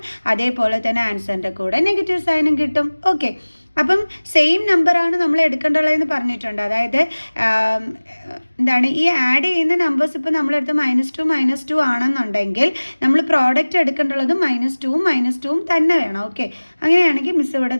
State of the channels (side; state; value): both; inverted; correlation -1.00